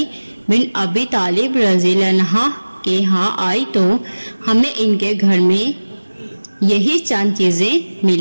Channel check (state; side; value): inverted; both; correlation -1.00